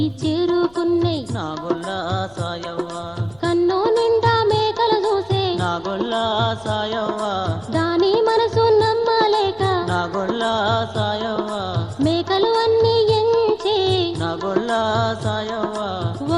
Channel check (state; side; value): noise; left; rumble, 28 dB below the sound